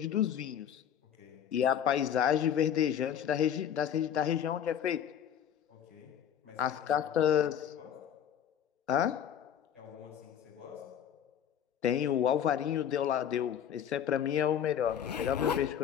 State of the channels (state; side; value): quieter; right; 9.3 dB